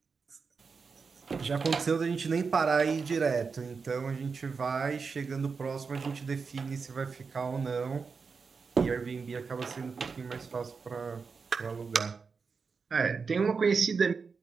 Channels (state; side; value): quieter; left; 5.1 dB